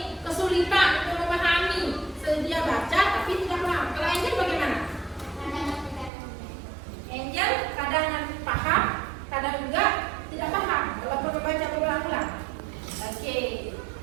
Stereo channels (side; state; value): left; drops out; at 6.1 s